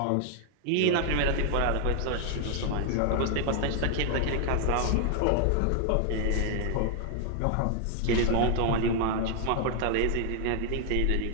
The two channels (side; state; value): both; different; correlation 0.00